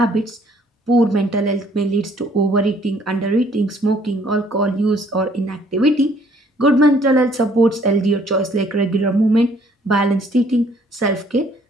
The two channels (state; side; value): normal; both; correlation 0.61